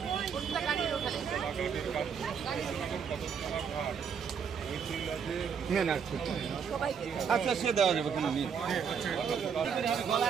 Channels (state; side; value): quieter; left; 6.9 dB